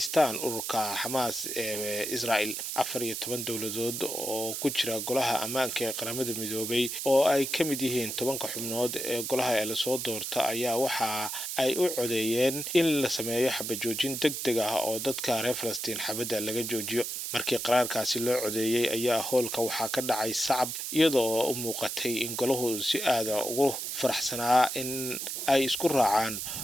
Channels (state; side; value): noise; right; hiss, 4 dB below the sound